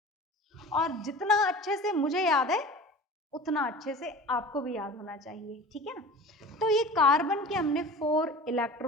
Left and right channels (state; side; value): normal; both; correlation 0.38